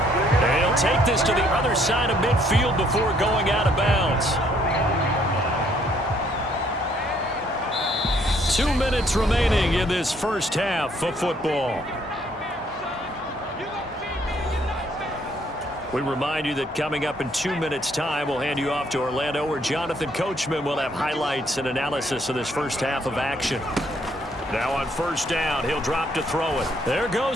And he'll take this to the other side of midfield before going out of bounds. 2 minutes remaining in this first half of football. We remind you that coming up in 2 minutes' time, we'll hand you off to Orlando, where Jonathan Coachman will have highlights and analysis of this first half of action. Now on first down, he'll drop to throw it. There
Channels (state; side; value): normal; both; correlation 0.67